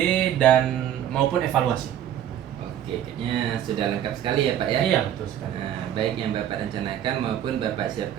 dan maupun evaluasi. Oke, kayaknya sudah lengkap sekali ya Pak ya? Iya, betul sekali. Nah, baik yang Bapak rencanakan maupun Bapak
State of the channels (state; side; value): quieter; left; 10.6 dB